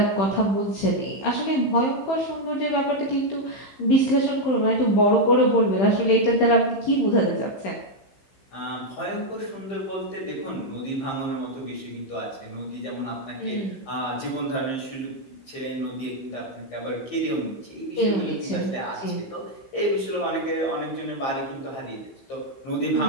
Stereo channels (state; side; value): late; right; 15 ms